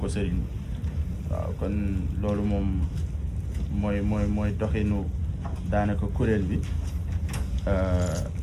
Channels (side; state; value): both; identical; correlation 1.00